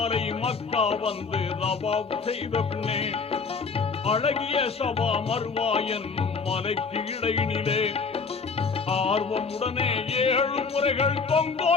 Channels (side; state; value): right; quieter; 4.8 dB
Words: மக்கா வந்து தவாபு செய்த பின்னே, அழகிய சபா மர்வா என்னும் மலைக்கு இடையினிலே ஆர்வமுடனே 7 முறைகள்